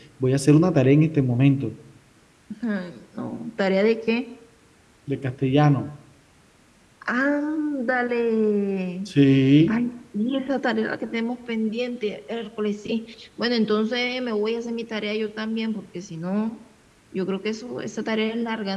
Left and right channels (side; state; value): both; identical; correlation 1.00